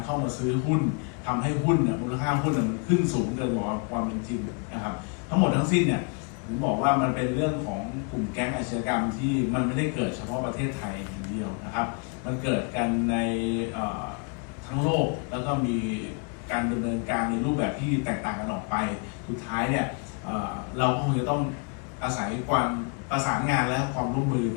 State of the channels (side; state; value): right; quieter; 36.0 dB